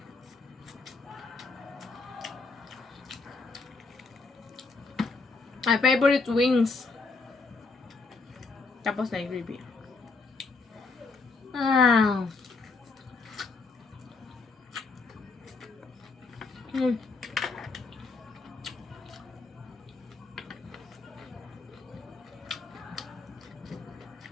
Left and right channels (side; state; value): right; quieter; 4.0 dB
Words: My favorite wings. Tapos na yung gravy.